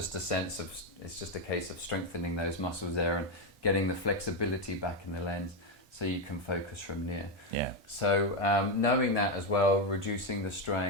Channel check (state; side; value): normal; both; correlation 0.07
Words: a case of strengthening those muscles there and getting the flexibility back in the lens so you can focus from near. Yeah. So knowing that as well, reducing the